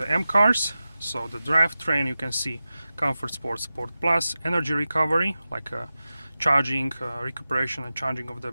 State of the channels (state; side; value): inverted; both; correlation -0.94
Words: M cars. So the drivetrain, you can see Comfort Sport, Sport Plus, energy recovery, like charging, recuperation and charging of the